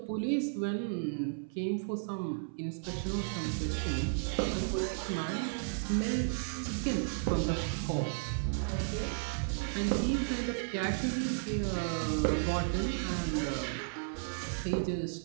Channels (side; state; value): left; silent; 55 dB below the other